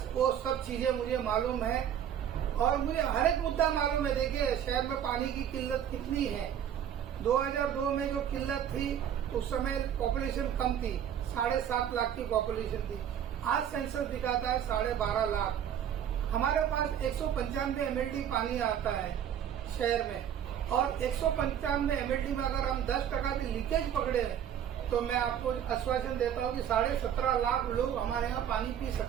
वो सब चीजें मुझे मालूम है और मुझे हर एक मुद्दा मालूम है। देखिए शहर में पानी की किल्लत कितनी है। 2002 में जो किल्लत थी उस समय पॉपुलेशन कम थी, 7.5 लाख की पॉपुलेशन थी। आज सेंसस दिखाता है 12.5 लाख। हमारे पास 195 MLD पानी आता है शहर में, और 195 MLD में अगर हम 10% भी लीकेज पकड़े तो मैं आपको आश्वासन देता हूँ कि 17.5 लाख लोग हमारे यहाँ पानी पी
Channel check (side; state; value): left; quieter; 9.5 dB